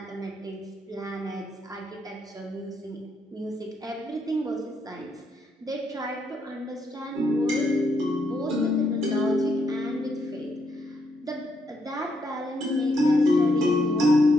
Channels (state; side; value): normal; both; correlation 0.77